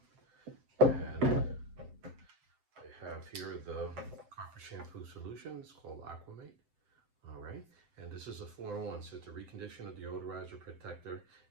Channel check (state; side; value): late; left; 7.8 ms